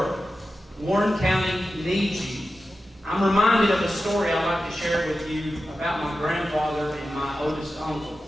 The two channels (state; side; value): normal; both; correlation 0.92